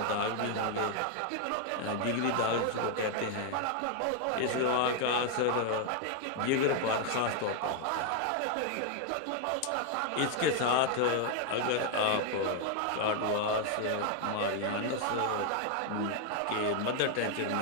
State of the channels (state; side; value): different; both; correlation 0.00